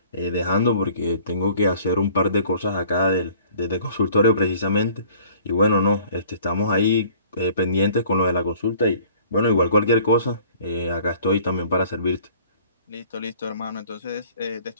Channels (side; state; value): both; inverted; correlation -0.52